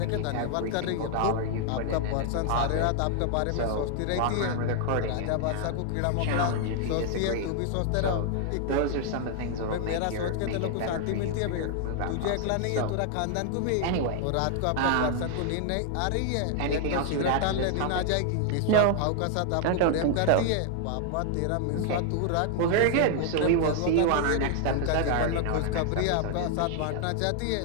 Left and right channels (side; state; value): both; different; correlation 0.00